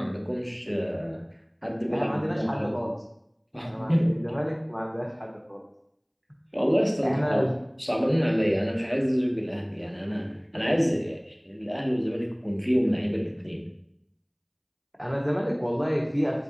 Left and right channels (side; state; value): both; identical; correlation 1.00